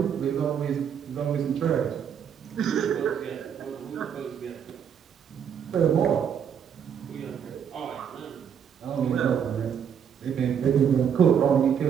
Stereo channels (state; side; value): quieter; left; 8.1 dB